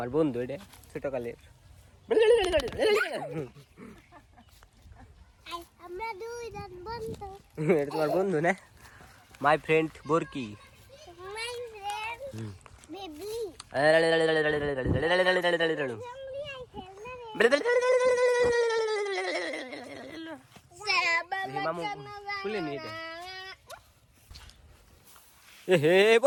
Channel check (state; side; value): identical; both; correlation 1.00